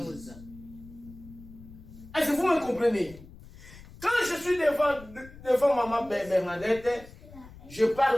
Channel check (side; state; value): left; noise; rumble, 19 dB below the sound